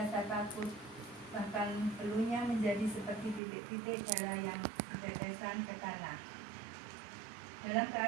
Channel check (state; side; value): drops out; left; at 3.4 s